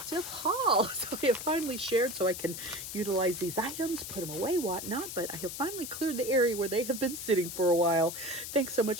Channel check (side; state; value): left; noise; hiss, 8 dB below the sound